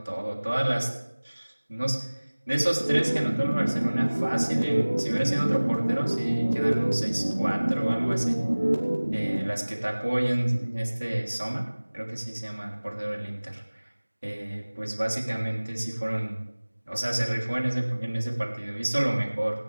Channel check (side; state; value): both; inverted; correlation -1.00